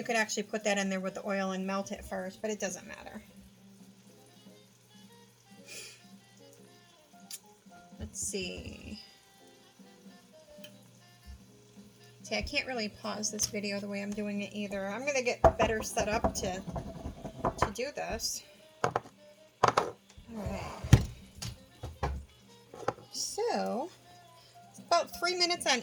could actually put that in there with the oil and melt it first, but it doesn't matter. Let's see. See, I can't really pause this video the way I'm doing it either. I'm going to get better set up to do this. Alright. So, about 3 minutes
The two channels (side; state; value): both; identical; correlation 1.00